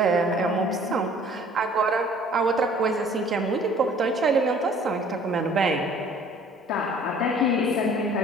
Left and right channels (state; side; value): normal; both; correlation 0.53